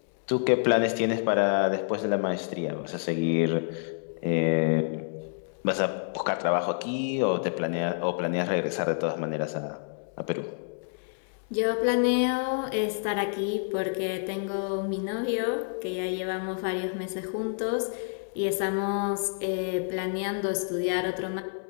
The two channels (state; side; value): silent; right; digital silence